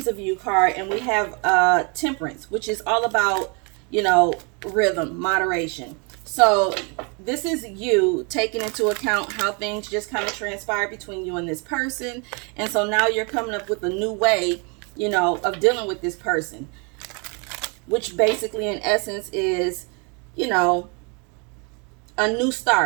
of You card, and we have Temperance, which is all about, you know, rhythm, moderation. So this is you taking into account how things just kind of transpire between you and this person. And so now you're coming up with a new way, you know, of dealing with this person, which basically in essence is, you know, a new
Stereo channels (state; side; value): quieter; left; 33.9 dB